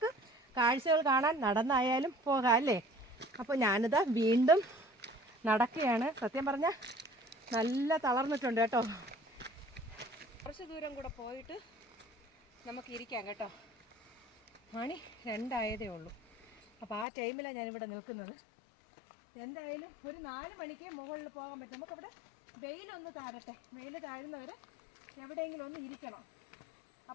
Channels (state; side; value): drops out; right; at 17.1 s